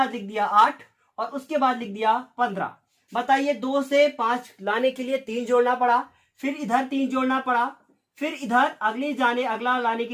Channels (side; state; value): both; identical; correlation 1.00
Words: लिख दिया 8 और उसके बाद लिख दिया 15। बताइए 2 से 5 लाने के लिए 3 जोड़ना पड़ा, फिर इधर 3 जोड़ना पड़ा, फिर इधर अगला लाने के